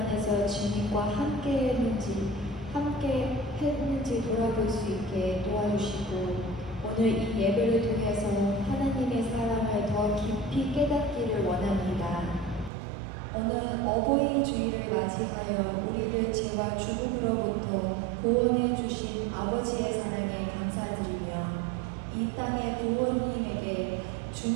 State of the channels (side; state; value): left; drops out; at 12.7 s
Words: 주님과 함께 했는지 돌아볼 수 있게 도와주시고 오늘 이 예배를 통해서 하나님의 사랑을 더 깊이 깨닫기를 원합니다. 오늘 어버이 주일을 맞이하여 우리를 죄와 죽음으로부터 구원해 주신 아버지의 사랑에 감사드리며 이 땅의 부모님에게